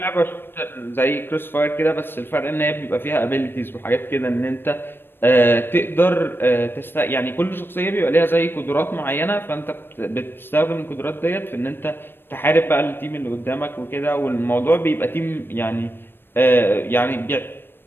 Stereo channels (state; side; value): late; right; 0.099 ms